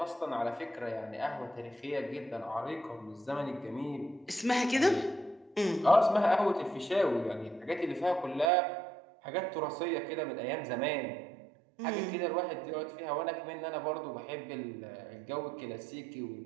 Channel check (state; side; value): drops out; left; at 8.5 s